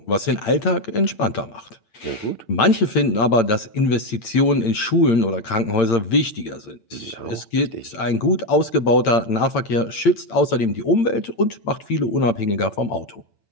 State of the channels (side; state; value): right; late; 8.8 ms